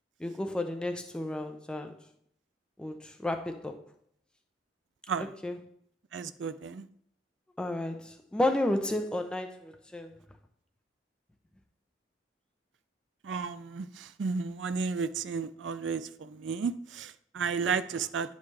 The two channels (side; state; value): both; normal; correlation 0.64